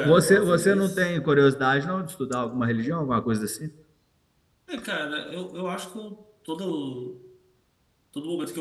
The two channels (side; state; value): both; identical; correlation 1.00